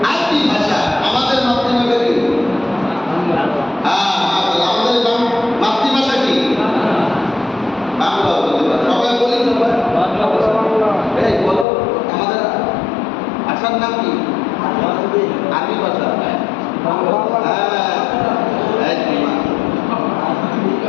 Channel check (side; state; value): right; drops out; at 11.7 s